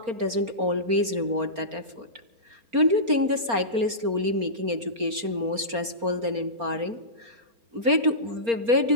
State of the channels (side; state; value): left; late; 4.3 ms